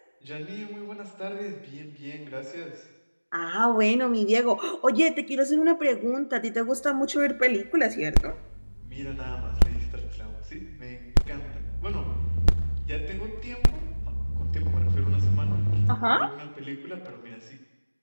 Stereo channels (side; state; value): both; inverted; correlation -1.00